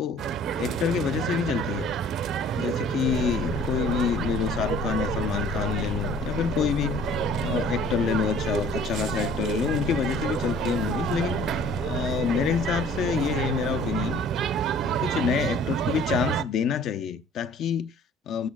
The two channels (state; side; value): normal; both; correlation 0.52